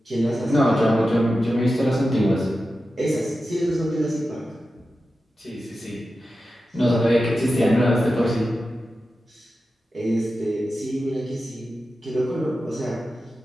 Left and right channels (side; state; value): both; normal; correlation 0.92